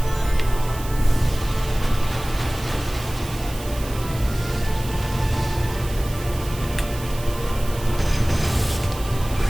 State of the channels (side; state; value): right; noise; hiss, 15 dB below the sound